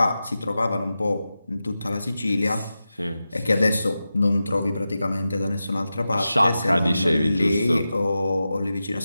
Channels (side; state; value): both; inverted; correlation -0.92